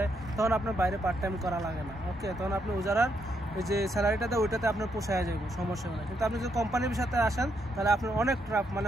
তখন আপনার বাইরে পার্ট টাইম করা লাগে না। ওকে, তখন আপনি ওজারার ওই যে স্যালারিটা দেয় ওইটাতে আপনার পোষায় যাবে, সমস্যা হয় না। কিন্তু আপনি যদি কোম্পানির সাথে আসেন তাহলে আপনার অনেক ট্রাফ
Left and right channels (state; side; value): normal; both; correlation 0.77